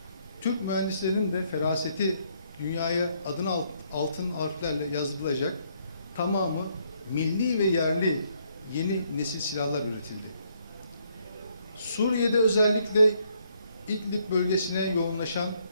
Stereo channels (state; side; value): inverted; both; correlation -0.70